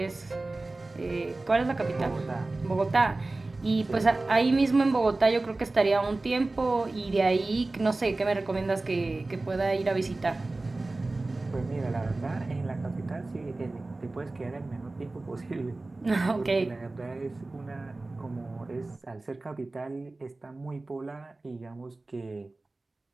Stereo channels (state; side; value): quieter; left; 3.1 dB